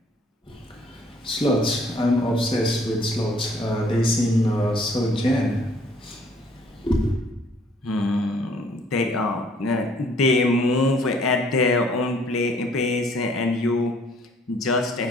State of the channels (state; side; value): normal; both; correlation 0.60